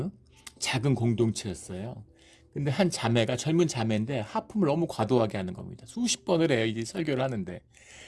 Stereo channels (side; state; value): both; identical; correlation 1.00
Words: 작은 공동체였어요. 근데 한 자매가, 젊은 자매인데 하품을 너무 과도하게 하는 겁니다. 수십 번을 해요, 이제 설교를 하는데.